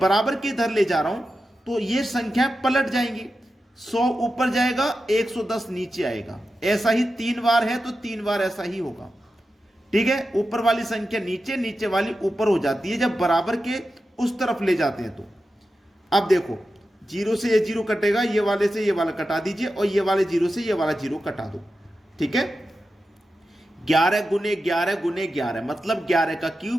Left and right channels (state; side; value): normal; both; correlation 0.91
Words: के इधर ले जा रहा हूं तो ये संख्या पलट जाएंगी, 100 ऊपर जाएगा, 110 नीचे आएगा। ऐसा ही 3 बार है तो 3 बार ऐसा ही होगा। ठीक है, ऊपर वाली संख्या नीचे, नीचे वाली ऊपर हो जाती है जब बराबर के उस तरफ ले जाते हैं तो। अब देखो, 0 से ये 0 कटेगा, ये वाले से ये वाला कटा दीजिए, और ये वाले 0 से ये वाला 0 कटा दो। ठीक है, 11 गुने 11 गुने 11 मतलब 11 का